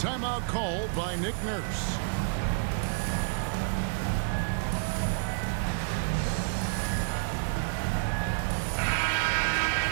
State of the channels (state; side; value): silent; left; digital silence